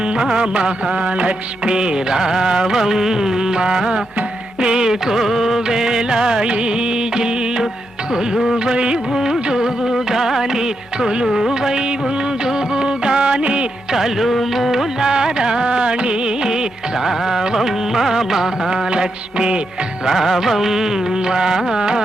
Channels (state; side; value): normal; both; correlation 0.83